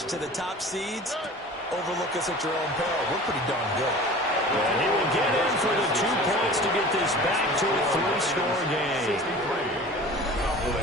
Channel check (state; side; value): normal; both; correlation 0.40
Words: to the top seeds. Overlook us at your own peril. We're pretty darn good. And he will get in for the 2 points to get this back to a 3-score game.